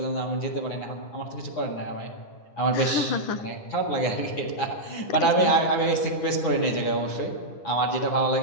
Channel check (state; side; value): late; right; 9.6 ms